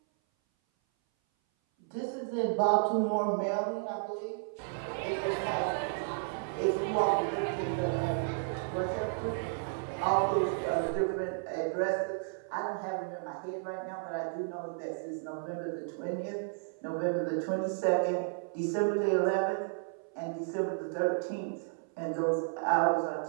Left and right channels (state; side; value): silent; left; 56 dB below the other